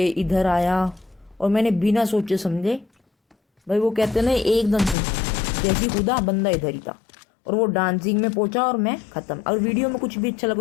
इधर आया, और मैंने बिना सोचे समझे, भाई वो कहते हैं ना एकदम से जैसी कूदा बंदा इधर ही था, और वो डांसिंग में पहुंचा और मैं ख़त्म। अगर वीडियो में कुछ भी अच्छा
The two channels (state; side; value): drops out; right; at 5.0 s